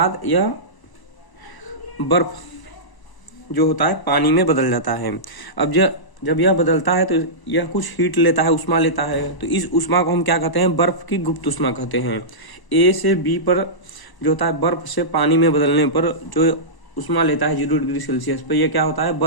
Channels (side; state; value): right; late; 1.0 ms